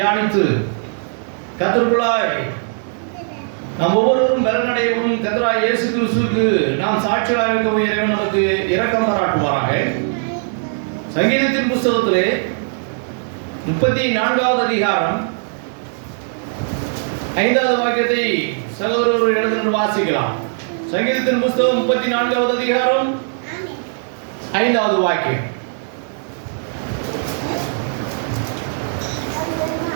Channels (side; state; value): left; silent; 66 dB below the other